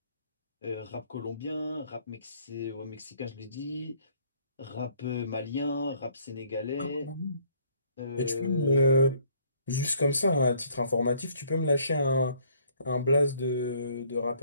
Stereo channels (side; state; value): both; inverted; correlation -0.62